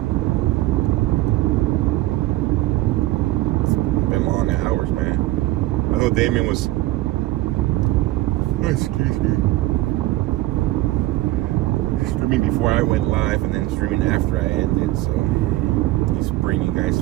It's been long hours, man. I know Damien was, excuse me, streaming before I went live and then streaming after I ended, so he's bringing you guys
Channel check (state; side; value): quieter; left; 17.0 dB